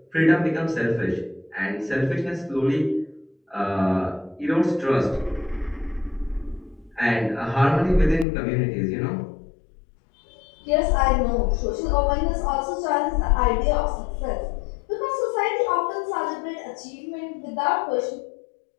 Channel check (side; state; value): right; drops out; at 8.2 s